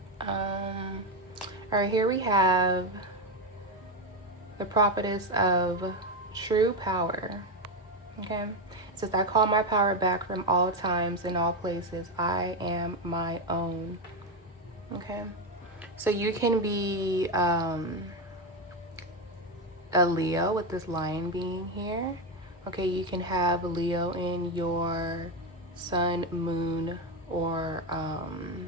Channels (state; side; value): normal; both; correlation 0.11